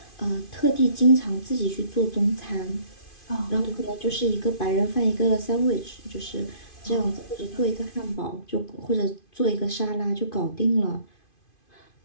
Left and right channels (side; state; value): right; late; 2.5 ms